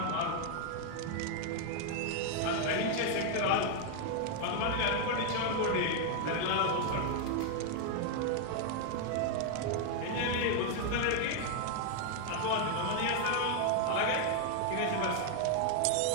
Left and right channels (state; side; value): different; both; correlation 0.00